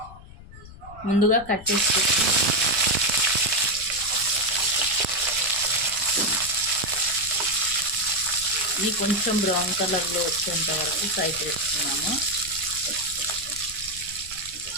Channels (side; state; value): left; noise; rumble, 18 dB below the sound